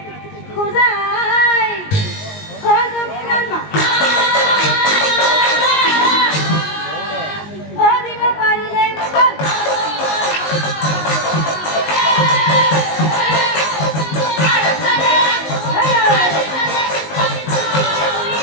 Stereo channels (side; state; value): right; late; 19 ms